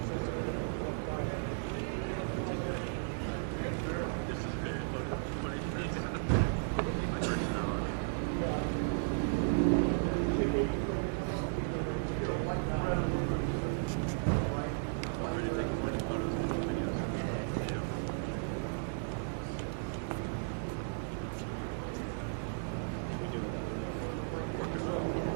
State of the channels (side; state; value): left; silent; 54 dB below the other